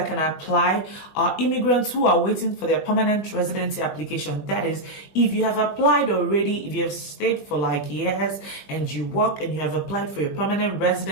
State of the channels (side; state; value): right; late; 20 ms